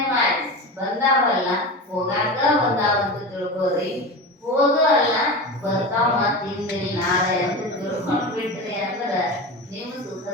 ಮಾಡಿ ಬಂದಾವಲ್ಲ, ಹೋಗಾಕ ಬಂದಾವಂತ ತಿಳ್ಕೋರಿ. ಹೋಗಲ್ಲ ಬರ್ತಾವ ಮತ್ತ ಹಿಂದಿಲ್ ನಾಳೆ ಅಂತ ತಿಳ್ಕೊಂಡ್ ಬಿಟ್ರಿ ಅಂದ್ರ ನಿಮ್ಮ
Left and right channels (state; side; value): normal; both; correlation 0.26